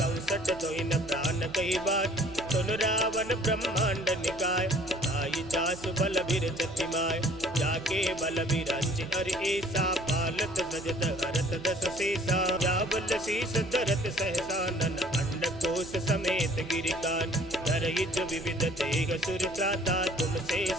सठ दो इन प्राण कही बात, सुन रावण ब्रह्मांड निकाय, आई जासु बल बीर जतिमाय, जाके बल बीरंज अर ऐसा, पालत सजत हरत दस शेषा, जावल शीस धरत सहसानन, अंड कोश समेत गिरिकान, धर युज विविध देह सुर त्राता, तुमसे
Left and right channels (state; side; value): noise; right; hum, 16 dB below the sound